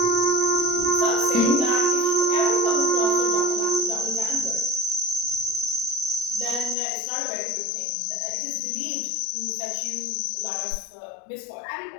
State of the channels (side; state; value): right; drops out; at 6.8 s